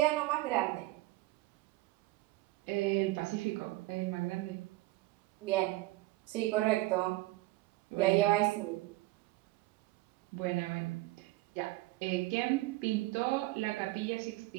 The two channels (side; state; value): left; quieter; 19.2 dB